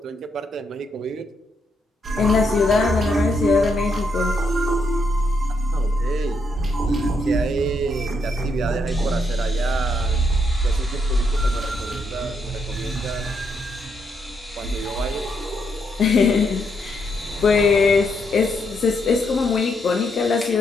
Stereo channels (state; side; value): normal; both; correlation 0.77